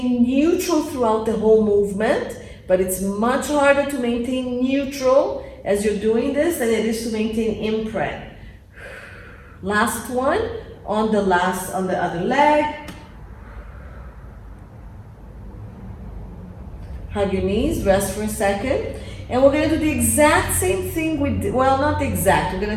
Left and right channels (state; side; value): identical; both; correlation 1.00